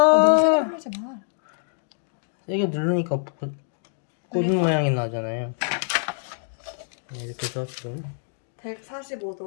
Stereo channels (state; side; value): silent; right; digital silence